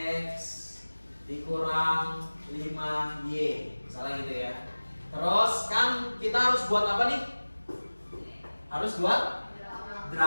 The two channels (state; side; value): inverted; both; correlation -1.00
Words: dikurang 5y, misalnya gitu ya. Terus kan kita harus buat apa nih? Harus buat